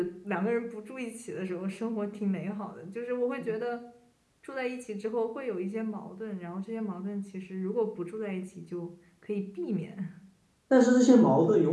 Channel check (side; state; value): both; identical; correlation 1.00